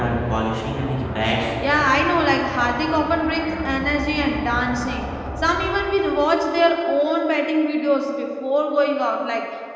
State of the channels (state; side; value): identical; both; correlation 1.00